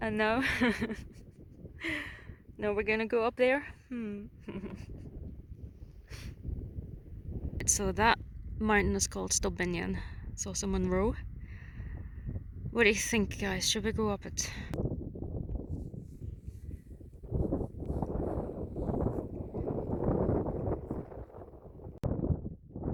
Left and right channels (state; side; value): identical; both; correlation 1.00